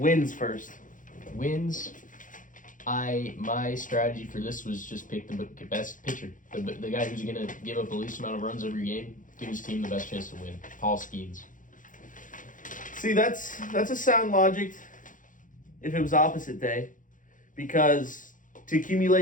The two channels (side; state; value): right; late; 0.38 ms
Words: first. Wins. My strategy for this was just pick the best pitcher, the guy who's gonna give up the least amount of runs every game, give his team the best chance to win. Paul Skeens. See, that's a sound logic. If it was opposite day, because to